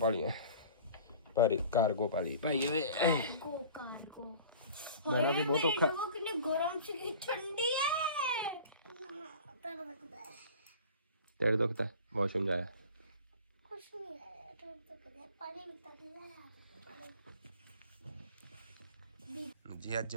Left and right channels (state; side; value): inverted; both; correlation -0.43